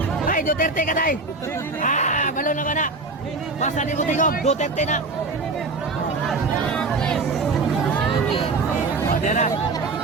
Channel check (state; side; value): quieter; left; 3.7 dB